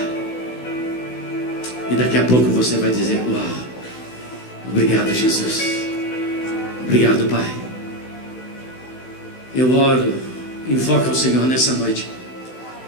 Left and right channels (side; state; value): right; late; 16 ms